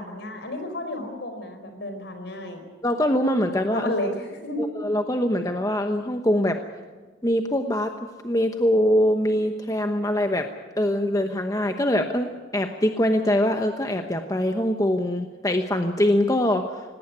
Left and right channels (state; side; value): normal; both; correlation 0.72